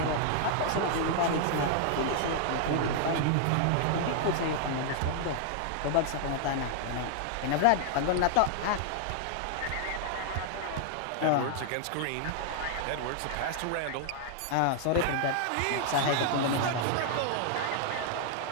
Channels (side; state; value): both; different; correlation 0.00